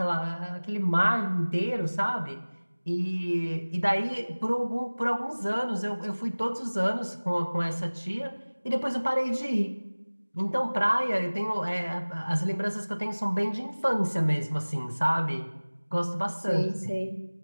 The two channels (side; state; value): both; inverted; correlation -1.00